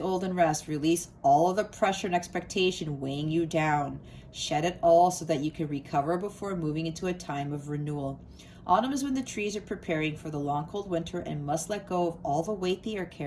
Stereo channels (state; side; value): identical; both; correlation 1.00